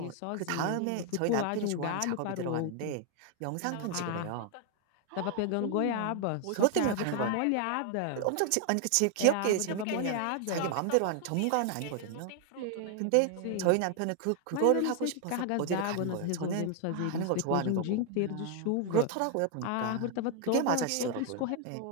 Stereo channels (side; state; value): both; different; correlation 0.00